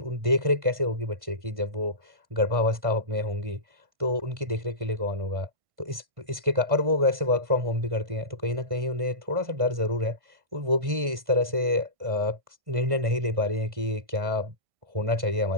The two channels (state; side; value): late; left; 1.5 ms